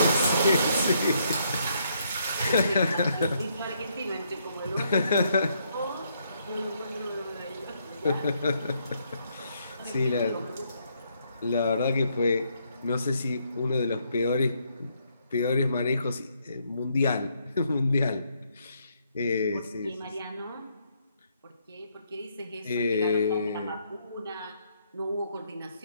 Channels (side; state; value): both; inverted; correlation -0.73